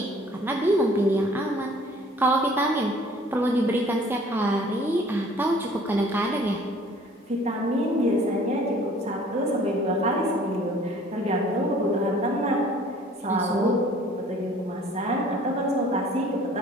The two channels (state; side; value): normal; both; correlation 0.53